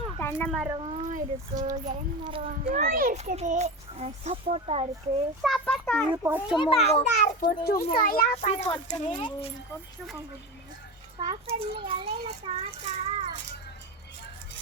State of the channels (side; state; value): both; normal; correlation 0.23